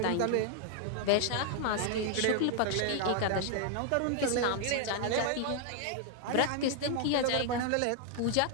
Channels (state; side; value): different; both; correlation 0.00